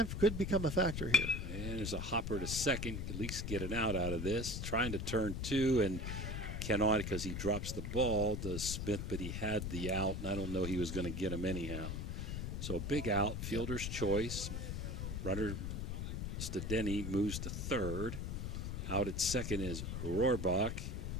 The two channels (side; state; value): left; noise; rumble, 3 dB below the sound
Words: could become a factor here. And there's a hopper to second, at least get an out of this. Trying to turn 2 and cannot because he drops the ball to Smith, but he had the out, and I don't know he was going to get him anyhow. So a big out, fielder's choice. Runner Stadeni moves to third. Out at second is Rohrbach,